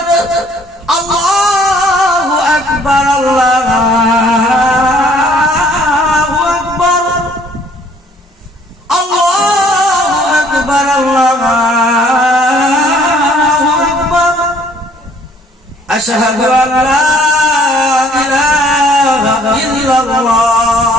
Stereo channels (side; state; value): both; normal; correlation 0.59